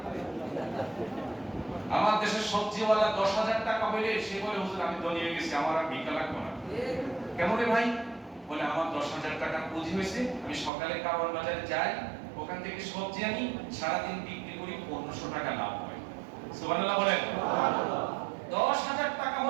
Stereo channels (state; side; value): drops out; left; at 10.7 s